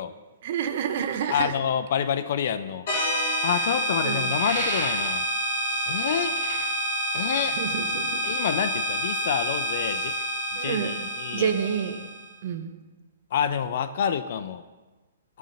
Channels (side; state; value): both; inverted; correlation -0.44